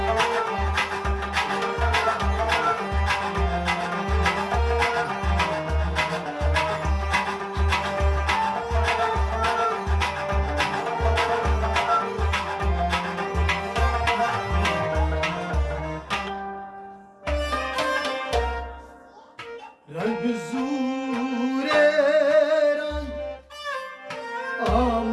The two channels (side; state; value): both; identical; correlation 1.00